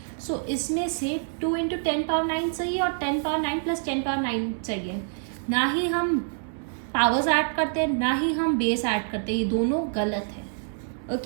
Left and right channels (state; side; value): silent; left; 61 dB below the other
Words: सो इसमें से 2 इंटू 10 पावर 9 सही है और 10 पावर 9 प्लस 10 पावर 9 सही है। ना ही हम पावर्स ऐड करते हैं ना ही हम बेस ऐड करते हैं, ये दोनों गलत है।